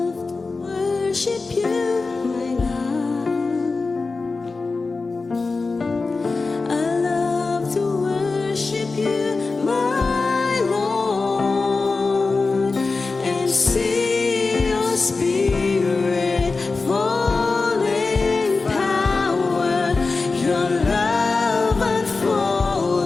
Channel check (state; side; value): quieter; right; 3.9 dB